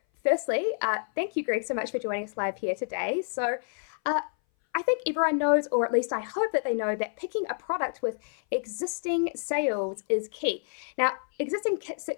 firstly, thank you, Greg, so much for joining us live here today. So I think everyone knows, or at least I hope that they know, that picking a product with existing sales is key. Now, existing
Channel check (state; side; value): silent; right; 58 dB below the other